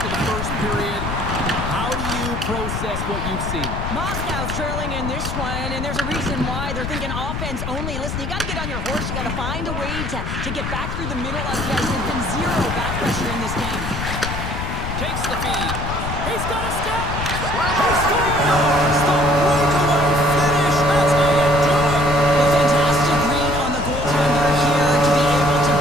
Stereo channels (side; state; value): left; noise; rumble, 4 dB below the sound